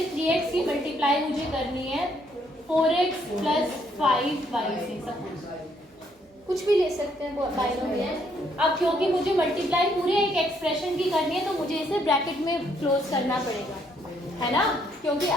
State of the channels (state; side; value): normal; both; correlation 0.70